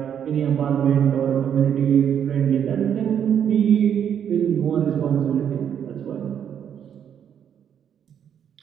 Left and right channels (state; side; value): quieter; left; 8.7 dB